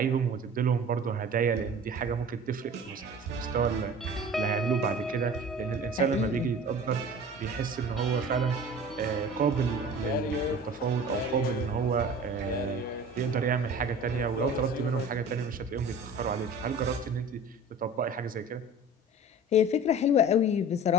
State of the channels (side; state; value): both; normal; correlation 0.40